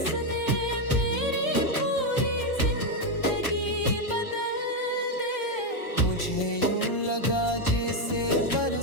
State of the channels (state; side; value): late; right; 1.2 ms